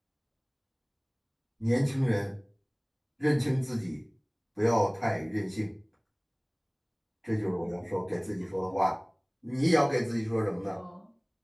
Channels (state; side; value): identical; both; correlation 1.00